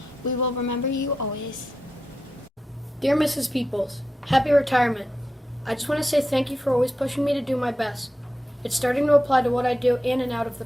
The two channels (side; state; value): both; normal; correlation 0.89